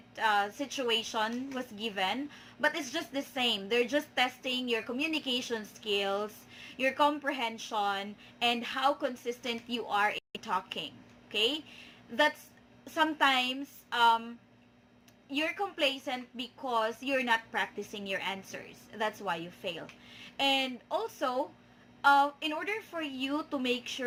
situation was given, but it's just the same. They're just testing your communication skills, your comprehension, and how consistent you are in talking. Okay? That's sometimes you're complacent because you're not practicing your answers. That's why you fail. And also, in order for you to make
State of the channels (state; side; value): identical; both; correlation 1.00